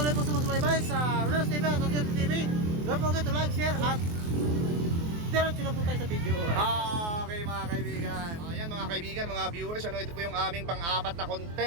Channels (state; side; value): late; left; 24 ms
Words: po sumusubaybay sa Rodel's TV at Rodel's TV, don't forget to like, share at diretso na po tayo sa video. Okay mga kaibigan. Ayan mga kaibigan, mga viewers, ito po yung aming pang-apat na